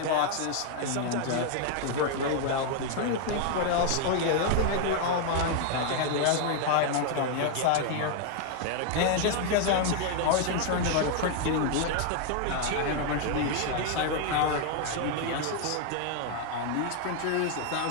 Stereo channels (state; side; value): different; both; correlation 0.00